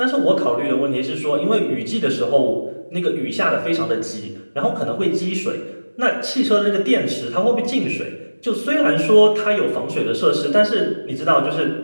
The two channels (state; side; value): inverted; both; correlation -1.00